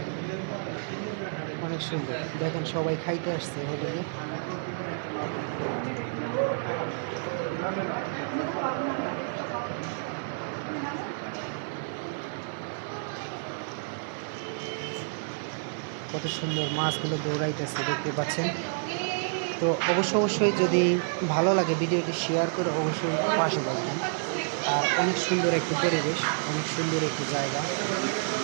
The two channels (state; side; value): silent; left; 58 dB below the other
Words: অনেক সুন্দর। দেখেন সবাই খাইতে আসছে হোটেলে। কত সুন্দর মাছগুলো দৌড়াইতেছে, দেখতে পাচ্ছেন। তো অবশ্যই যদি ভালো লাগে ভিডিওটি শেয়ার করে অবশ্যই পাশে থাকবেন। আর অনেক সুন্দর একটি পরিবেশ, অনেক সুন্দর একটি জায়গা।